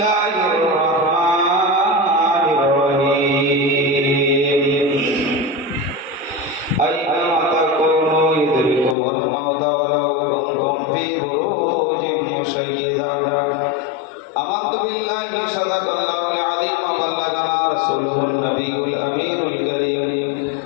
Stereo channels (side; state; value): right; drops out; at 9.0 s